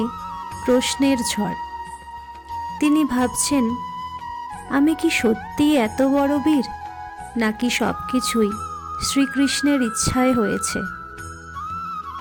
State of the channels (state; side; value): identical; both; correlation 1.00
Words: প্রশ্নের ঝড়। তিনি ভাবছেন, আমি কি সত্যিই এত বড় বীর, নাকি সব কিছুই শ্রীকৃষ্ণের ইচ্ছায় হয়েছে?